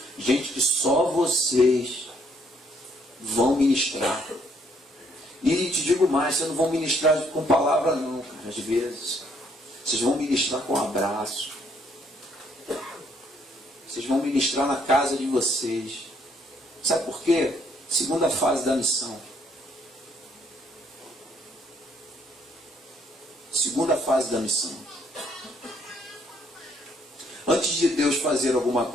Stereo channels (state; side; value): normal; both; correlation 0.68